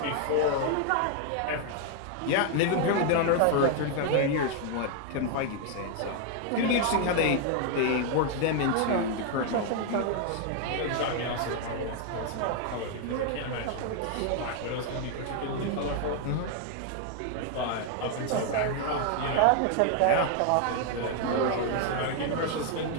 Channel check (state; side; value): different; both; correlation 0.00